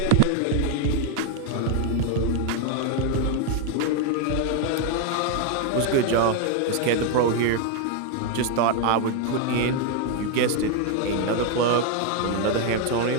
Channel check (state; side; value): different; both; correlation 0.01